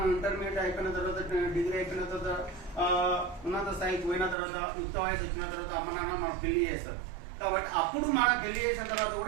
ఇంటర్మీడియట్ అయిపోయిన తర్వాత, డిగ్రీ అయిపోయిన తర్వాత, ఉన్నత స్థాయికి పోయిన తర్వాత, యుక్త వయసు వచ్చిన తర్వాత అమ్మ నాన్న మనకు పెళ్లి చేస్తారు. కాబట్టి అప్పుడు మనం పెళ్లి చేసిన తర్వాత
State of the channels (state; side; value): drops out; left; at 4.4 s